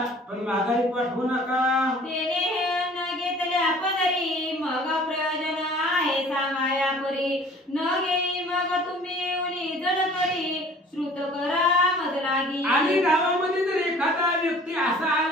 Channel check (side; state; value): both; normal; correlation 0.50